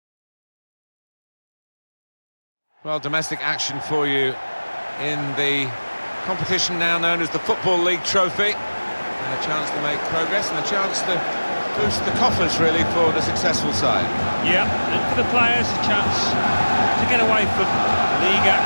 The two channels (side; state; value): both; inverted; correlation -1.00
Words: Well, domestic action for you in the competition now known as the Football League trophy. And a chance to make progress and a chance to boost the coffers, really, for the successful side. Yeah, and for the players, a chance to get away from league